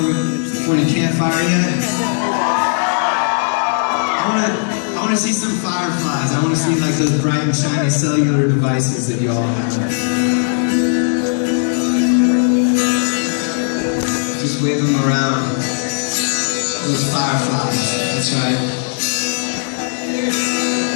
campfire yet? I want to see some fireflies. I want to see like those bright and shiny cellular devices that y'all have. Just wave them around. Those fireflies. That's right.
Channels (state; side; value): silent; right; digital silence